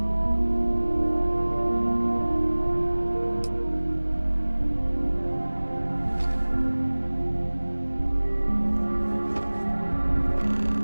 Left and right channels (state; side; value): inverted; both; correlation -1.00